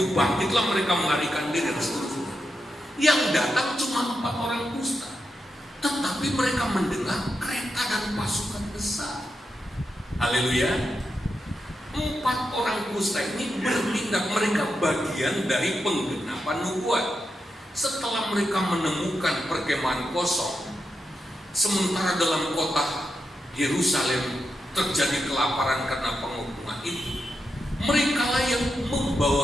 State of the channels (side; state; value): both; normal; correlation 0.86